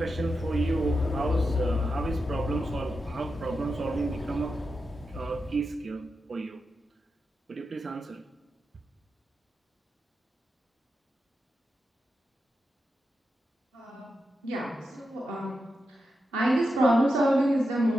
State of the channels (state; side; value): normal; both; correlation 0.88